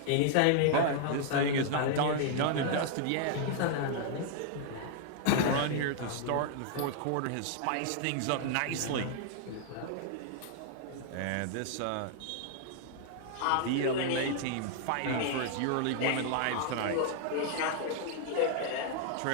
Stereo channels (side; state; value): both; different; correlation -0.01